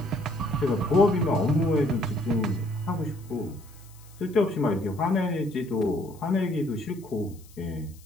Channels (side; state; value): left; noise; hiss, 25 dB below the sound